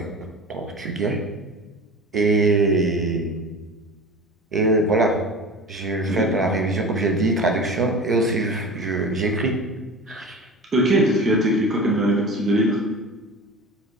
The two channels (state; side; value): normal; both; correlation 0.34